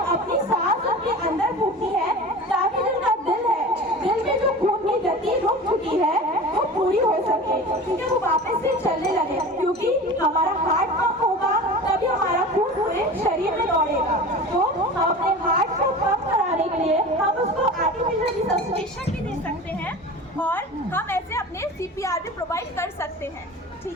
सांस अपने अंदर फूकनी है ताकि जो उनका दिल है, दिल में जो खून की गति रुक चुकी है वो पूरी हो सके, ठीक है, वो वापस से चलने लगे। क्योंकि हमारा हार्ट पंप होगा तभी हमारा खून पूरे शरीर में दौड़ेगा। तो हम अपने हार्ट को पंप कराने के लिए हम उसको आर्टिफिशियल रिससिटेशन भी दे सकते हैं और हम ऐसे अपने CPR भी प्रोवाइड कर सकते हैं।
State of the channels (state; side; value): normal; both; correlation 0.35